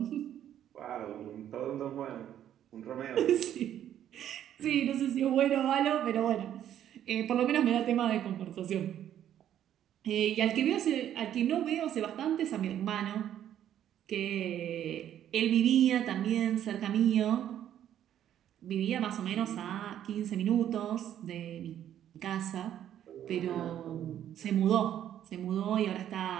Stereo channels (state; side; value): quieter; left; 10.8 dB